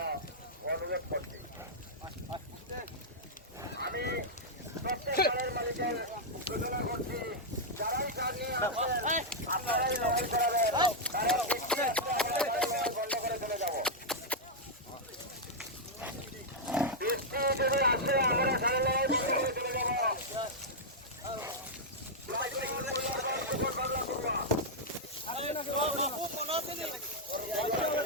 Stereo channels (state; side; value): normal; both; correlation -0.05